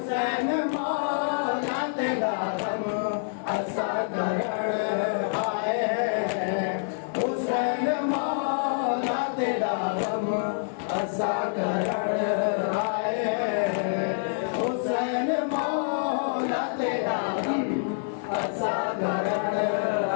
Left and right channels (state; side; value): silent; right; digital silence